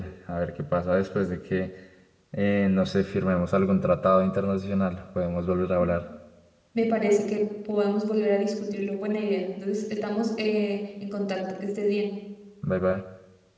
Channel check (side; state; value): both; identical; correlation 1.00